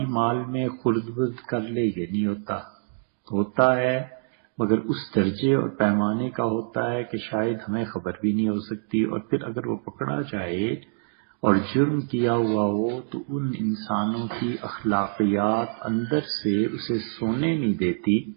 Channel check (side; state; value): left; silent; 58 dB below the other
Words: مال میں خرد برد کر لے یہ نہیں ہوتا ہے مگر اس درجے اور پیمانے کا ہوتا ہے کہ شاید ہمیں خبر بھی نہیں ہو سکتی. اور پھر اگر وہ پکڑا جائے اور جرم کیا ہوا ہو تو ان انسانوں کی اخلاقیات اندر سے اسے سونے نہیں دیتی.